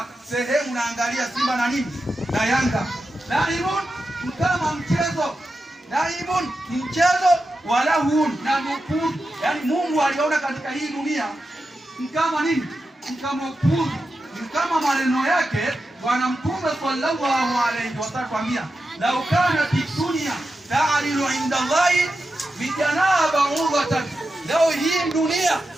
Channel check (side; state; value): both; normal; correlation 0.90